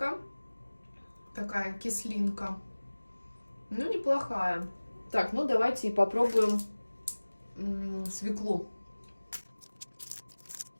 Такая кислинка. Ну, неплохая. Так, ну давайте и попробуем свеклу.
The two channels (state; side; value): inverted; both; correlation -1.00